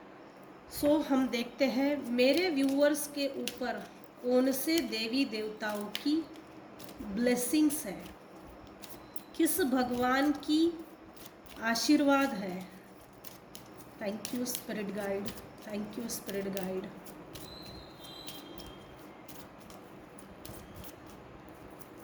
सो हम देखते हैं मेरे व्यूअर्स के ऊपर कौन से देवी देवताओं की ब्लेसिंग्स है, किस भगवान की आशीर्वाद है। Thank you spirit guide, thank you spirit guide.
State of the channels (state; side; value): identical; both; correlation 1.00